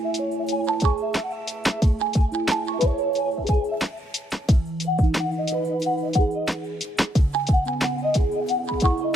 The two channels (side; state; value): both; normal; correlation 0.78